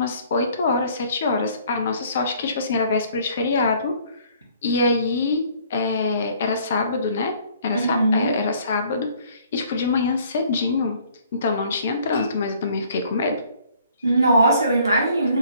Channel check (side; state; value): both; inverted; correlation -0.59